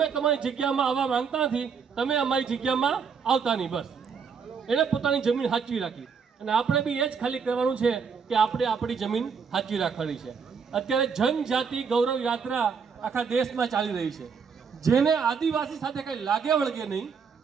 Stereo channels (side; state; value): left; quieter; 6.1 dB